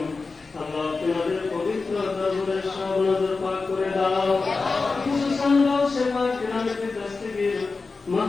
আল্লাহ তোমাদের পবিত্র দরবারে সব নজর পাক করে দাও খুশুসান দাও সেবা কিরামতে দস্তগীর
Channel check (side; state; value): right; quieter; 4.1 dB